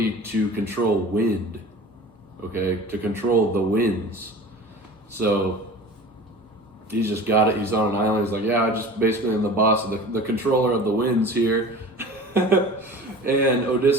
to control wind, okay? To control the winds. So he's just got it. He's on an island. He's like, yeah, I just basically am the boss of the controller of the winds here. And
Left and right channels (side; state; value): both; normal; correlation 0.39